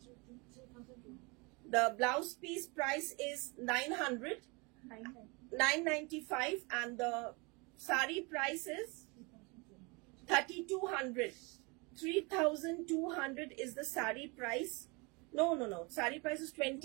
The blouse piece price is 995 and the sari price is 3,200. 3,200 is the sari price. No. Sari price is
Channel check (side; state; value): left; quieter; 28.9 dB